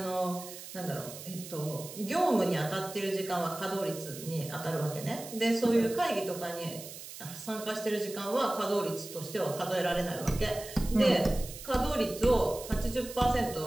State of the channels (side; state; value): right; noise; hiss, 13 dB below the sound